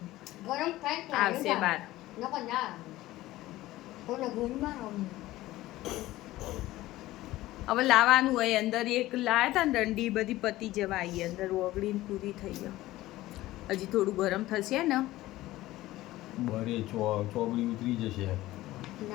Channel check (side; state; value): right; quieter; 16.7 dB